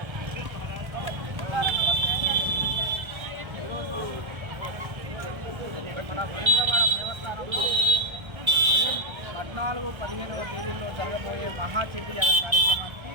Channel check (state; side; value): late; left; 1.3 ms